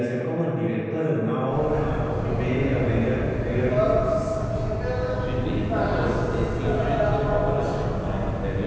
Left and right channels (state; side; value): identical; both; correlation 1.00